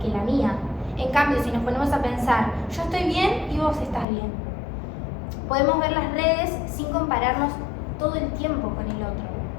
que la mía. En cambio, si nos ponemos a pensar, yo estoy bien y vos estás bien, podemos ver las redes sin compararnos todo el tiempo con el otro.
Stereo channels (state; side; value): drops out; right; at 4.0 s